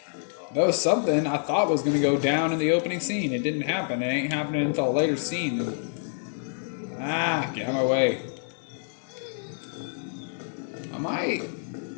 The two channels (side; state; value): right; silent; digital silence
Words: that was something I thought was going to go down in the opening scene. It didn't happen. It ain't happening until a later scene. Get out of my way. Am I